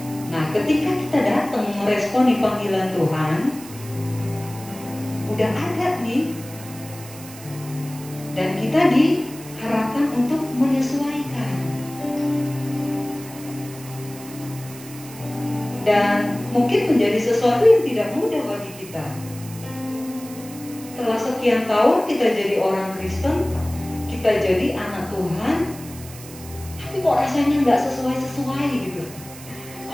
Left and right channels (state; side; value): noise; right; hiss, 16 dB below the sound